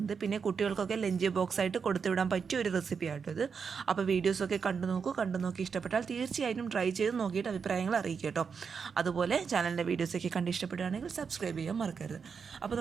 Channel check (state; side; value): quieter; left; 6.0 dB